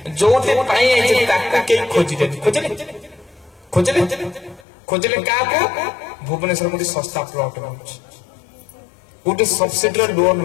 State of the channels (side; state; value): right; drops out; at 4.7 s